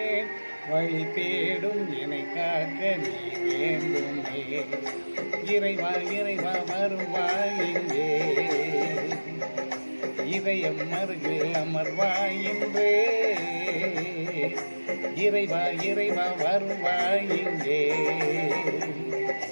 வழி தேடும் என்னை காக்க நீ வேண்டுமே. இறைவா இறைவா வருவாய் இங்கே, இதயம் அருகில் அமர்வாய் இன்றே. இறைவா இறைவா வருவாய் இங்கே,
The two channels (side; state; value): both; inverted; correlation -1.00